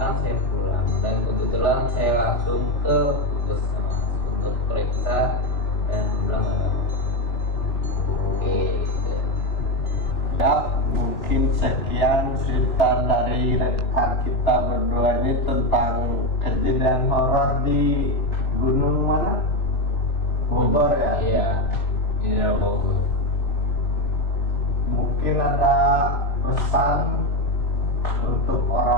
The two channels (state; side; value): late; right; 3.4 ms